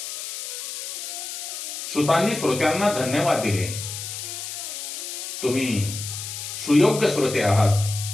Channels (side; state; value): left; noise; hiss, 7 dB below the sound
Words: सुतांनी श्रोत्यांना धन्यवाद दिले. तुम्ही सुयोग्य श्रोते आहात,